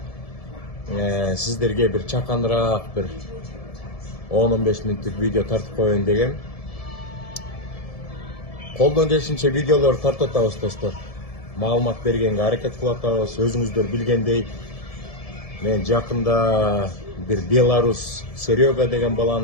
сиздерге бир чаканыраак бир 10-15 мүнөттүк видео тартып коеюн дегем. Колдон келишинче видеолор тартып атабыз достор. Маалымат бергенге аракет кылып атабыз. Өзүңүздөр билгендей, мен жакында бир Беларус Серега деген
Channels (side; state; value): right; late; 1.7 ms